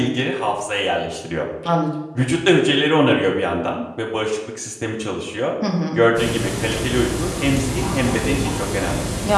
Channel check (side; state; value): both; identical; correlation 1.00